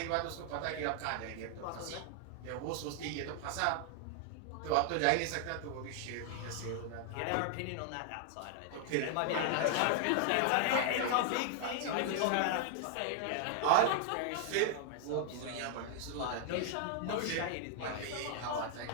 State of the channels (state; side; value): different; both; correlation 0.00